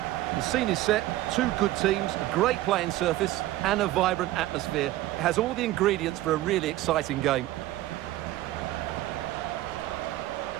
The scene is set, two good teams, a great playing surface and a vibrant atmosphere. It has all the ingredients for a really exciting game.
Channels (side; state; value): left; quieter; 15.7 dB